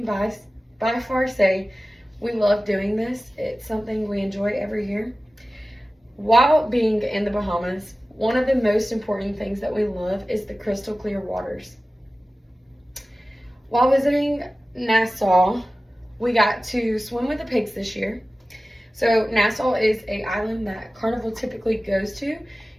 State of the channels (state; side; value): normal; both; correlation 0.96